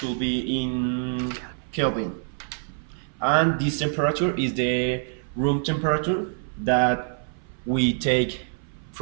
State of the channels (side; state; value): left; silent; 57 dB below the other